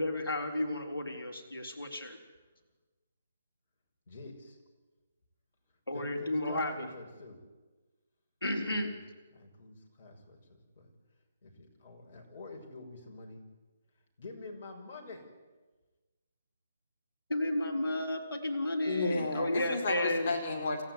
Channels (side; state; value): both; inverted; correlation -0.80